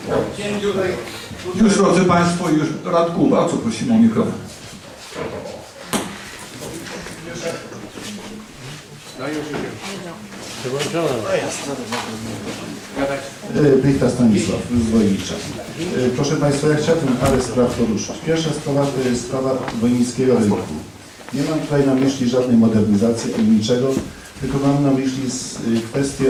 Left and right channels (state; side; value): identical; both; correlation 1.00